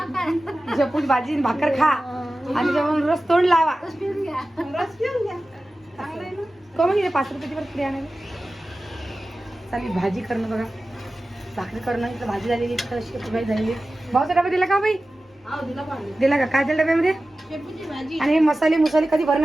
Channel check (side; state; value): both; normal; correlation 0.95